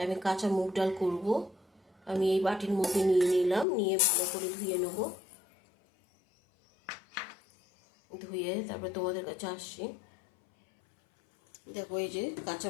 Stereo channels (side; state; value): right; drops out; at 3.7 s